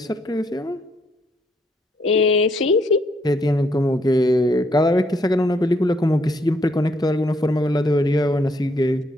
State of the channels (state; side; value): normal; both; correlation 0.71